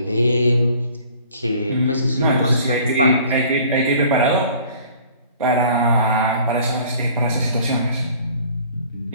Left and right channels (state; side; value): inverted; both; correlation -0.51